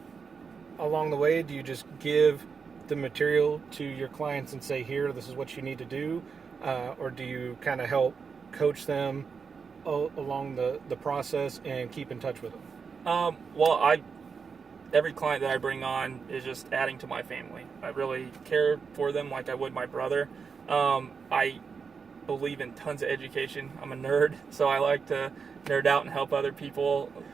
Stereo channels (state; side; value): quieter; left; 5.7 dB